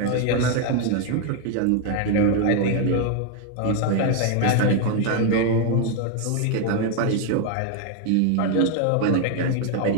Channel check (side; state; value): both; different; correlation 0.01